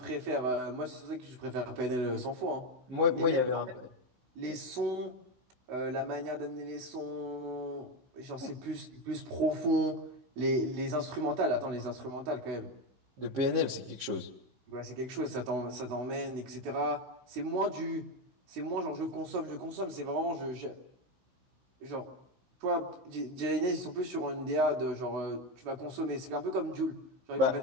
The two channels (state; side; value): late; left; 16 ms